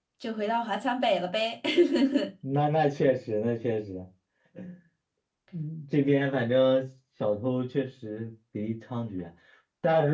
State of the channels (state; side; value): identical; both; correlation 1.00